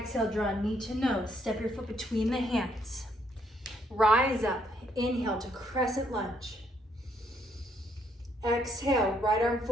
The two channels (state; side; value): normal; both; correlation 0.71